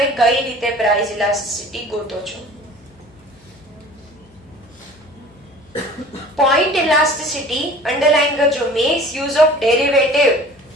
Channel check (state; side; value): noise; left; hum, 29 dB below the sound